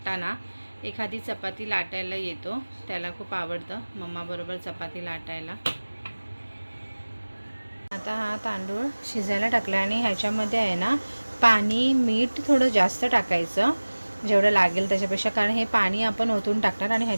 एखादी चपाती लाटायला येतो. त्याला खूप आवडतं मम्मा बरोबर चपाती लाटायला. आता हा तांदूळ शिजायला टाकला आणि ह्याच्यामध्ये आहे ना पाणी मीठ थोडं जास्त टाकायचं जेवढं लागेल त्याच्यापेक्षा, कारण हे पाणी आपण ओतून टाकणार. आणि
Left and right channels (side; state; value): both; inverted; correlation -1.00